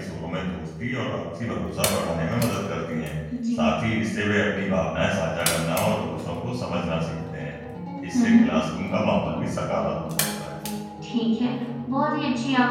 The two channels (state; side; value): identical; both; correlation 1.00